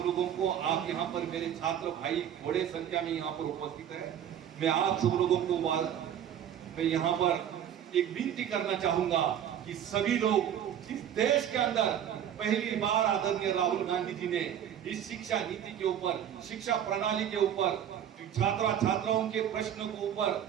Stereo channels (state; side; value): quieter; left; 9.8 dB